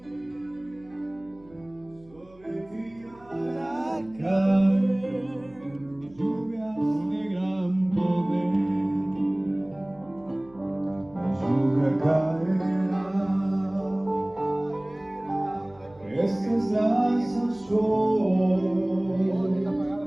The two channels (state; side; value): noise; right; hum, 26 dB below the sound